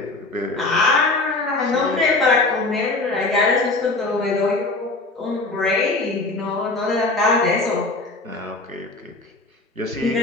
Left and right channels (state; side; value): quieter; right; 3.2 dB